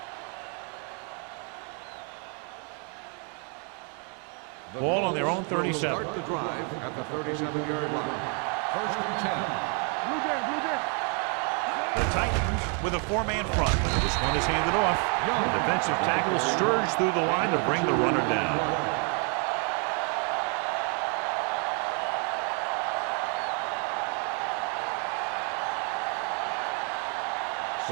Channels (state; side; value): quieter; left; 38.4 dB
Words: Ball on their own 37. Start the drive at the 37-yard line. 1st and 10. Blue Jay. The Titans with a 4-man front. This one is handed off. The defensive tackle surged through the line to bring the runner down.